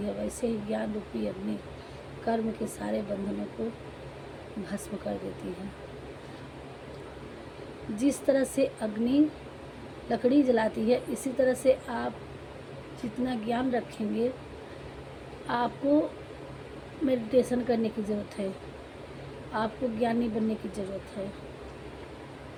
वैसे ही ज्ञान रूपी अग्नि कर्म के सारे बंधनों को भस्म कर देती है। जिस तरह से अग्नि लकड़ी जलाती है, इसी तरह से आप जितना ज्ञान रखेंगे, आपको मेडिटेशन करने की ज़रूरत है, आपको ज्ञानी बनने की ज़रूरत है,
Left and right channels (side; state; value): both; identical; correlation 1.00